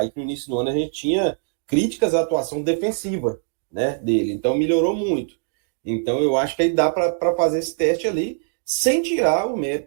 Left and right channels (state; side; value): silent; left; digital silence